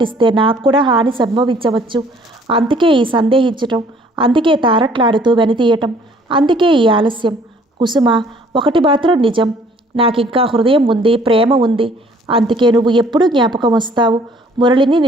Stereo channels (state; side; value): normal; both; correlation 0.58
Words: నాకు కూడా హాని సంభవించవచ్చు. అందుకే ఈ సందేహించటం, అందుకే తారట్లాడుతూ వెనుతీయటం, అందుకే ఈ ఆలస్యం. కుసుమ, ఒకటి మాత్రం నిజం, నాకింకా హృదయం ఉంది, ప్రేమ ఉంది. అందుకే నువ్వు ఎప్పుడూ జ్ఞాపకం వస్తావు. మురళిని